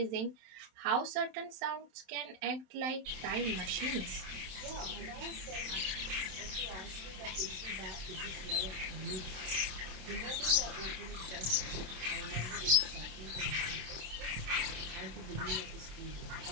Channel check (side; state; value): left; late; 27 ms